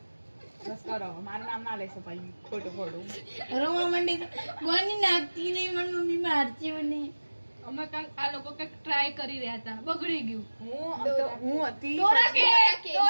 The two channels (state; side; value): inverted; both; correlation -1.00